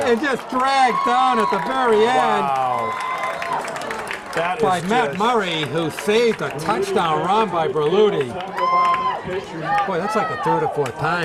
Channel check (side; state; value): both; identical; correlation 1.00